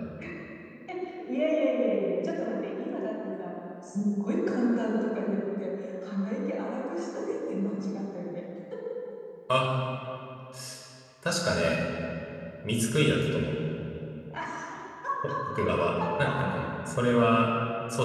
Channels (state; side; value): identical; both; correlation 1.00